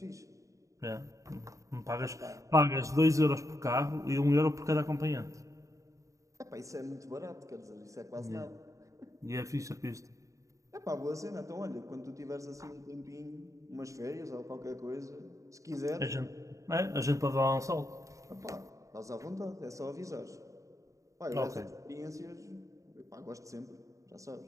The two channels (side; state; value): left; late; 0.16 ms